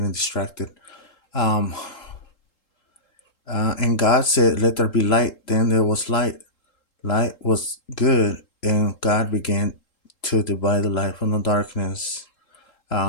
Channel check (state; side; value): late; right; 3.7 ms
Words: distracted. Um, and God said, "Let there be light." Then there was light. Light was good, and God began to divide the light from the darkness.